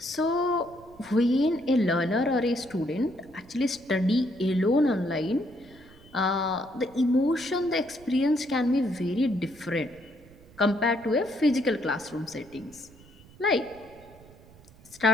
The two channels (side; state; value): right; noise; rumble, 24 dB below the sound